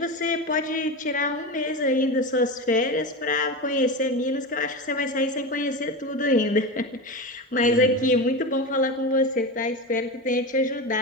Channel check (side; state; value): both; normal; correlation 0.22